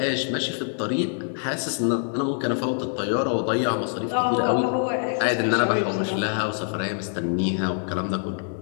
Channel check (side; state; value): right; silent; digital silence